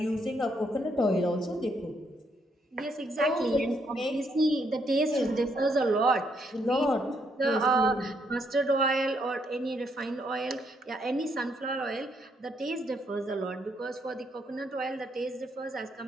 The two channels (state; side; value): normal; both; correlation 0.74